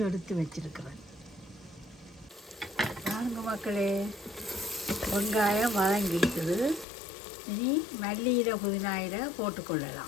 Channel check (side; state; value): right; drops out; at 6.9 s